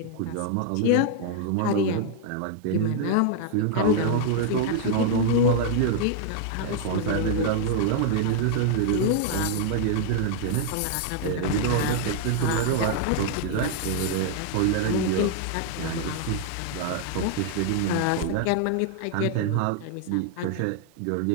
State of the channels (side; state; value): both; different; correlation 0.00